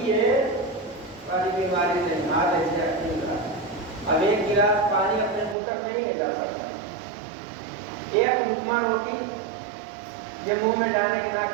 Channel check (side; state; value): left; drops out; at 5.6 s